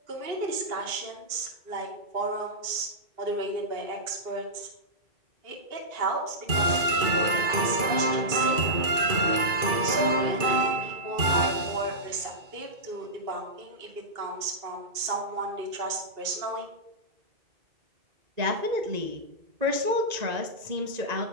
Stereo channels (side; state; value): left; late; 2.3 ms